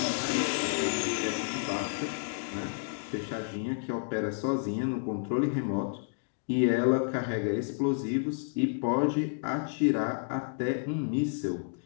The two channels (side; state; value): right; silent; digital silence